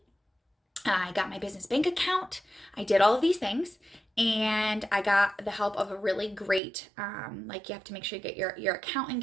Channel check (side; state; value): left; drops out; at 6.6 s